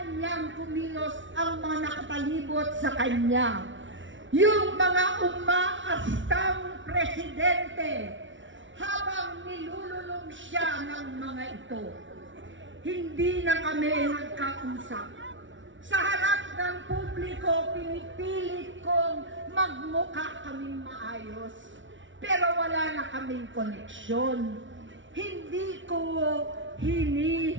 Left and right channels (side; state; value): left; late; 0.56 ms